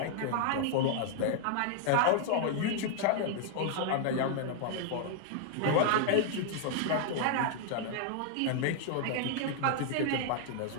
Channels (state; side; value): different; both; correlation 0.00